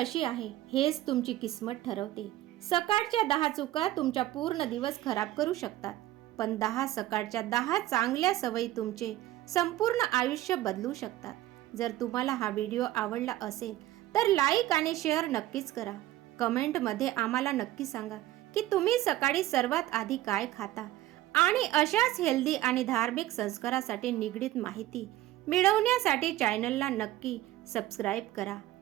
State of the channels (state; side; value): quieter; left; 15.3 dB